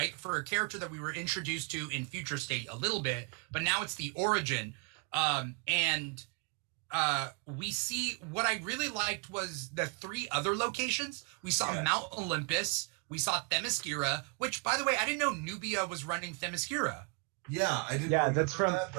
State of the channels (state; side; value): quieter; left; 32.9 dB